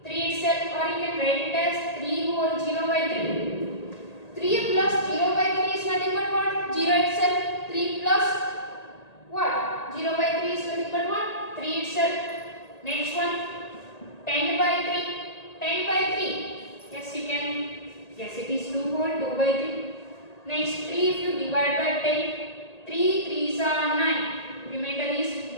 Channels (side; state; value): right; late; 1.8 ms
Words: 3 itself, or you can write it as 3 whole 0 by 3. 3 plus 0 by 3 is nothing but what? 0 itself. 3 plus what? 0 by 3 is nothing but what? 3 itself. Next one 10 by 3. 10 by 3. Yes, you can. Yes, it is 2 whole 2 by 3. Next 3 if you divide by 10. 3 3s are 9. Remainder is